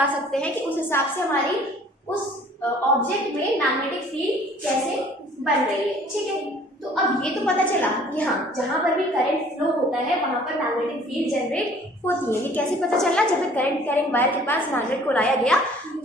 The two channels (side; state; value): both; normal; correlation 0.54